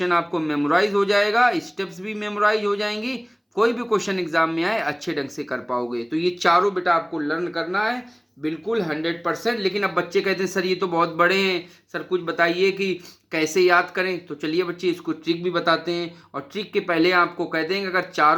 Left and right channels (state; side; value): identical; both; correlation 1.00